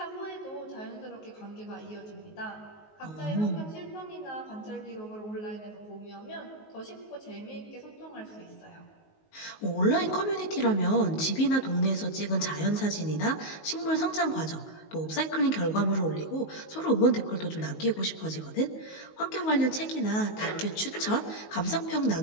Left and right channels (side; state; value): right; late; 19 ms